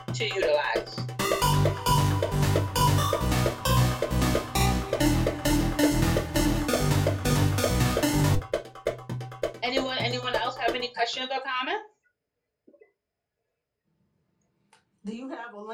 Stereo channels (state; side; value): identical; both; correlation 1.00